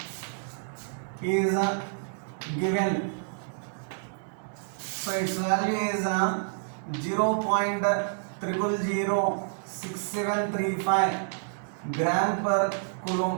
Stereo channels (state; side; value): silent; left; digital silence